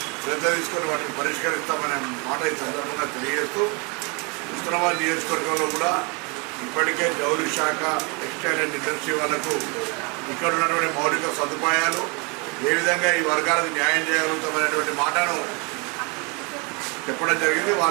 శ్రద్ధ తీసుకొని వాటిని పరిష్కరిస్తామనే మాట ఈ సందర్భంగా తెలియజేస్తూ హుస్నాబాద్ నియోజకవర్గంలో కూడా ఇప్పటికే జౌళి శాఖ, టెక్స్టైల్ అండ్ ఇండస్ట్రీ వాళ్లకు ఇక్కడ ఉన్నటువంటి మౌలిక సదుపాయాలు ఏ విధంగా ఈ వర్గాలకు న్యాయం చేయగలుగుతామనేటువంటి మాటను చెప్పడం జరిగింది.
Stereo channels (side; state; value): left; quieter; 31.0 dB